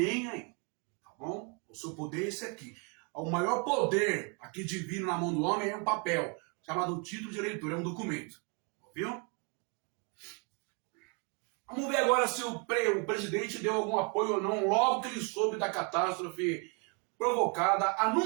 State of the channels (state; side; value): quieter; left; 35.2 dB